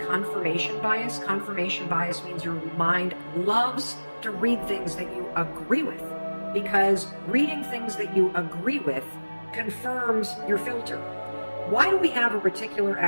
confirmation bias. Confirmation bias means your mind loves to read things that you agree with, because reading things that you agree with confirms your filter. Why do we have a reticular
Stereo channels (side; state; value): both; inverted; correlation -1.00